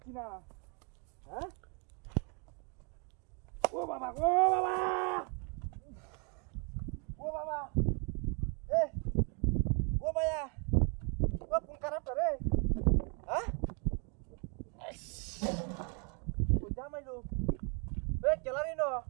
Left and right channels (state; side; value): quieter; left; 36.6 dB